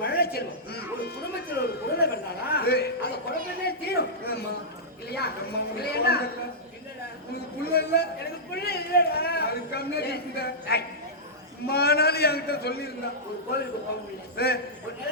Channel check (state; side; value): normal; both; correlation -0.12